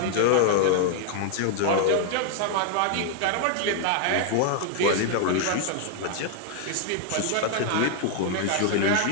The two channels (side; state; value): both; different; correlation 0.00